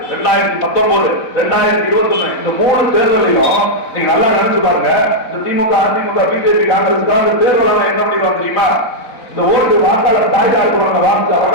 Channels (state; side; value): late; right; 4.1 ms